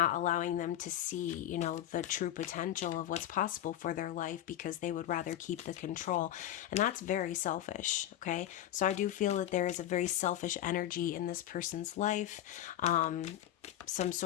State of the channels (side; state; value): right; quieter; 12.2 dB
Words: allowing them to see, the true potential of what's possible for their life, because they would rather keep the control. And that's very selfish, okay? So I do feel that there is a very selfish energy in this person's life, some